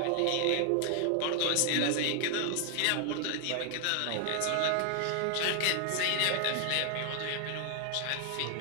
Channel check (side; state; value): both; different; correlation 0.00